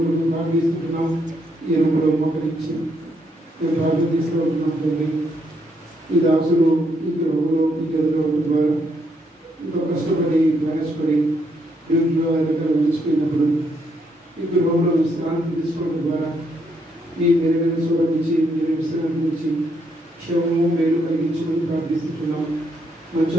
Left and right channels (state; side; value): normal; both; correlation 0.75